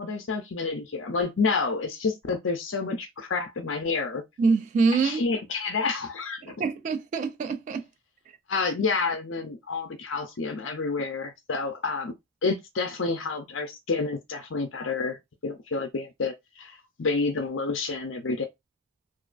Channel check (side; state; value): both; normal; correlation 0.24